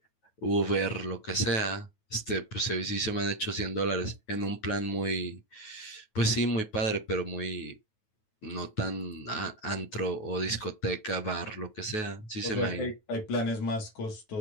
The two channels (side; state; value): right; late; 9.3 ms